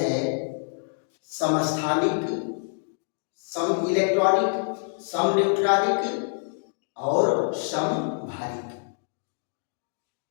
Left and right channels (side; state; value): right; silent; digital silence